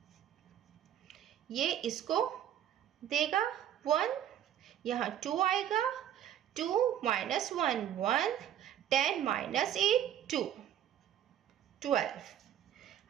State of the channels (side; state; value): left; quieter; 10.7 dB